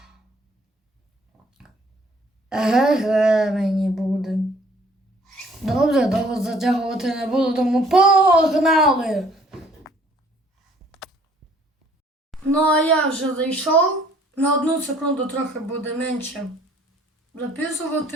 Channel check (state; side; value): normal; both; correlation 0.58